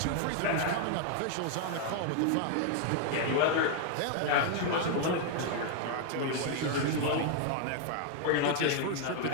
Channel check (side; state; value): both; different; correlation 0.00